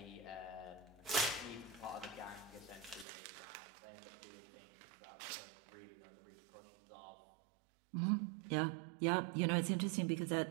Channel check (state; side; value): drops out; left; at 3.1 s